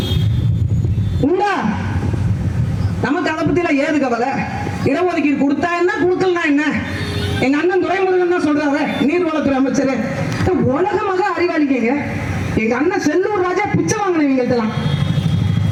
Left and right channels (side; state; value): both; identical; correlation 1.00